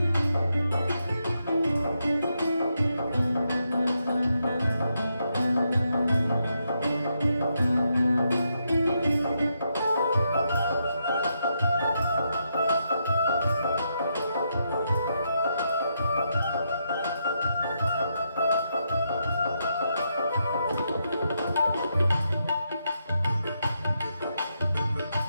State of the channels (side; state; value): both; inverted; correlation -0.81